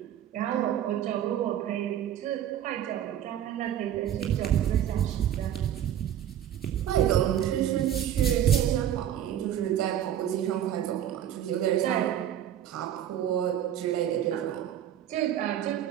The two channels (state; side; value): quieter; left; 10.7 dB